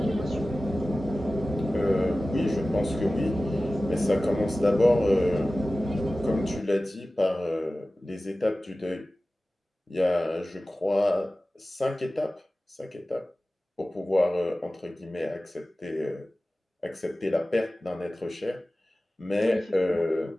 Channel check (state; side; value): normal; both; correlation 0.96